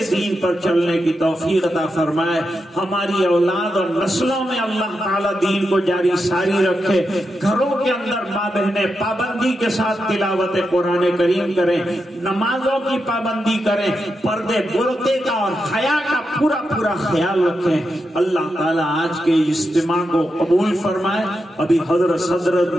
دین پر چلنے کی توفیق عطا فرمائے، ہماری اولاد اور نسلوں میں اللہ تعالیٰ دین کو جاری ساری رکھے، گھروں کے اندر ماں بہنیں پابندی کے ساتھ تلاوت قرآن کریم کریں، نمازوں کی پابندی کریں، پردے برقع کا اور حیا کا پورا پورا خیال رکھیں۔ اللہ تعالیٰ آج کے اجتماع کو قبول فرمائے۔ ابھی حضرت صدر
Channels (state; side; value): normal; both; correlation 0.86